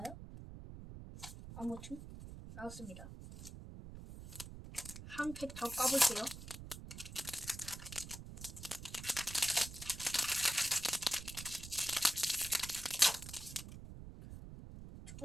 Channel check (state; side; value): noise; right; rumble, 11 dB below the sound